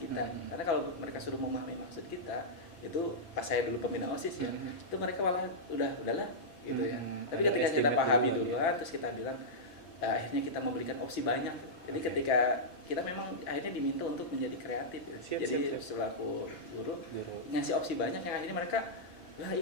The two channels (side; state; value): right; late; 5.9 ms